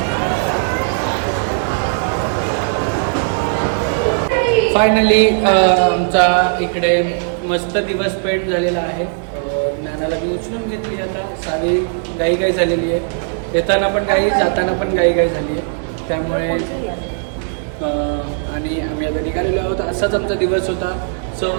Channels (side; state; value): left; silent; digital silence